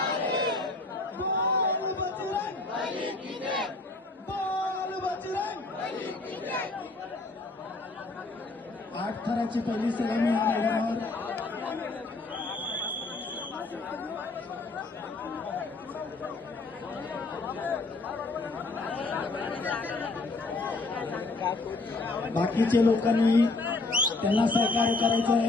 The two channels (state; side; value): quieter; right; 3.3 dB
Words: बोल बजरंग, बोल बजरंग. 8 थराची पहिली सलामी या मैदानावर. बाकीचे लोकांनी त्यांना सहकार्य करायचं